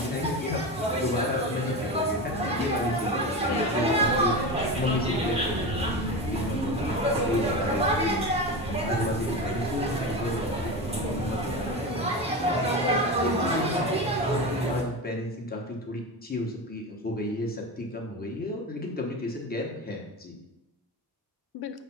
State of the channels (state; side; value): normal; both; correlation 0.23